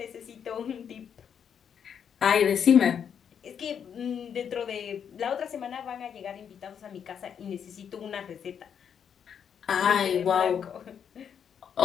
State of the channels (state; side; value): quieter; right; 7.9 dB